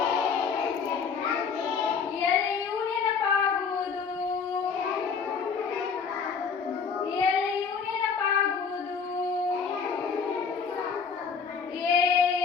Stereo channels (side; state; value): right; quieter; 5.9 dB